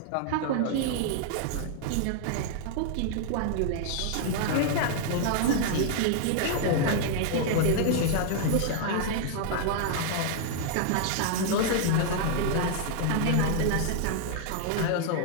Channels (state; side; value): different; both; correlation -0.01